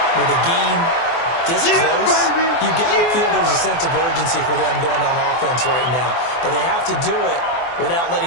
with the game this close, you got to feel there's a sense of urgency for them going on offense right now. But they have to do it without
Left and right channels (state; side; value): late; right; 24 ms